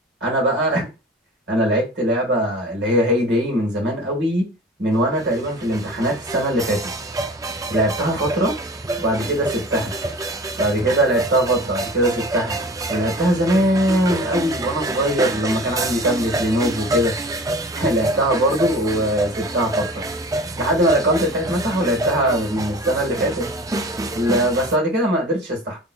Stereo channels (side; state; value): both; normal; correlation 0.40